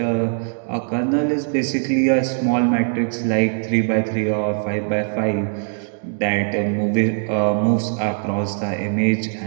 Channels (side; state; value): left; silent; digital silence